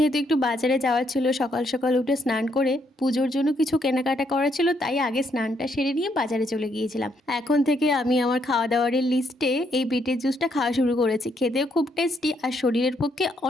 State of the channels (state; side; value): normal; both; correlation 0.73